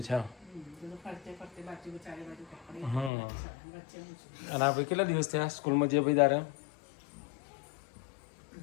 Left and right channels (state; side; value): drops out; right; at 3.1 s